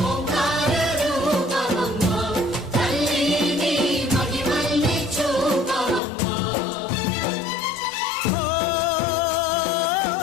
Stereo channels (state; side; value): drops out; right; at 6.0 s